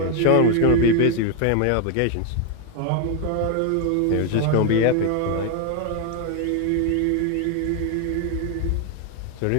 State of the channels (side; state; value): both; different; correlation 0.01